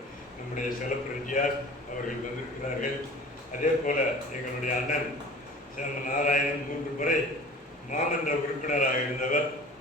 நம்முடைய செலப்பிரஜியார் அவர்கள் வந்திருக்கிறார்கள். அதே போல் எங்களுடைய அண்ணன் நாராயணன் 3 முறை மாமன்ற உறுப்பினராக இருந்தவர்,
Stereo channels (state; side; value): normal; both; correlation 0.42